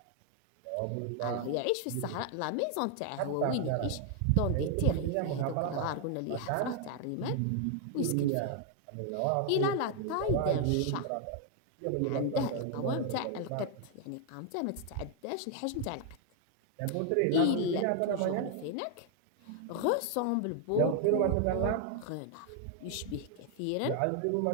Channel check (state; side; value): different; both; correlation 0.00